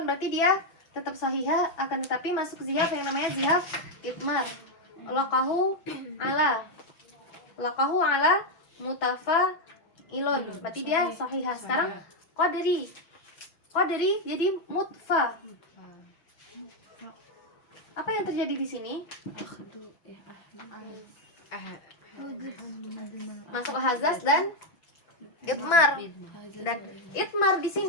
berarti dia tetap sahihah, akan tetapi masuk zihaf yang namanya zihaf itmar. Laqahu ala mutafa ilun, berarti dia sahihah. Sekarang qadri jadi mutfa. Apa yang terjadi di sini? Masuk hazaz dan itmar. Dan itmar di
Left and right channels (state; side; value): late; right; 6.1 ms